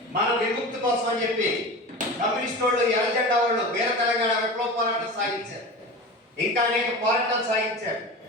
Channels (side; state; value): both; normal; correlation 0.31